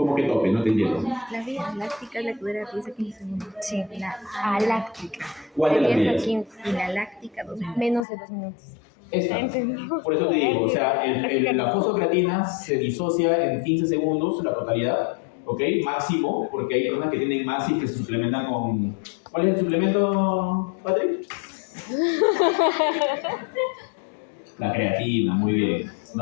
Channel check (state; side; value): drops out; right; at 8.1 s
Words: que tope? No te entiendo. La vía láctica es la que dura 10 a 15 segundos. Sí, la aláctica. ¿Cuál de las 10 a vías? 15. Y la láctica 2 minutos. Menos de 2 minutos. Esta. Por eso te digo, o sea, la fosfocreatina se disocia en 15 segundos, la totalidad, ¿ok? Máximo, porque hay personas que tienen más y que se suplementan con... ¿Cuál es el suplemento, Patrick? La creatina, muy bien.